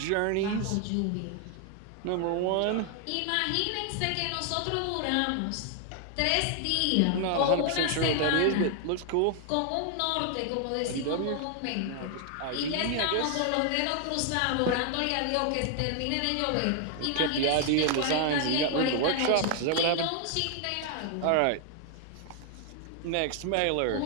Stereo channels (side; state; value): both; different; correlation 0.00